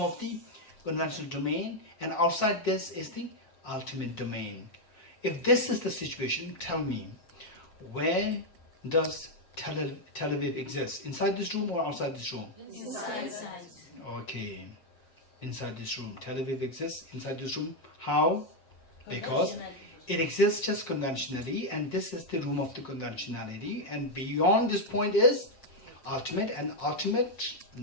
of the conventional domain, and outside this is the ultimate domain. If this is the situation, tell me, where does Tel Aviv exist? Inside this room or outside this room? Inside. Okay. Inside this room. Tel Aviv exists inside this room. How? Because it exists just conventionally, and this is the room of the conventionality, and beyond this point is ultimate, and ultimate,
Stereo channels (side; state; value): right; late; 7.5 ms